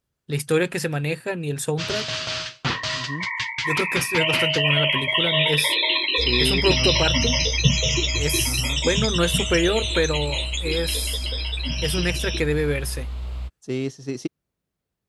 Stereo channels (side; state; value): both; identical; correlation 1.00